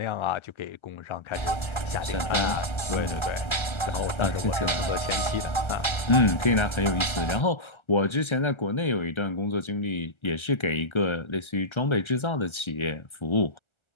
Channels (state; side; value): late; right; 1.3 ms